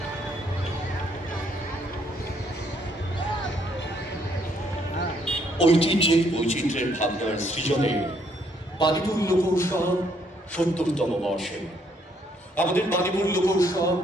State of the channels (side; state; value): both; normal; correlation 0.69